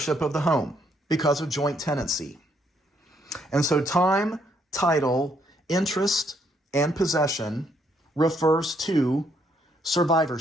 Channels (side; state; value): both; normal; correlation 0.71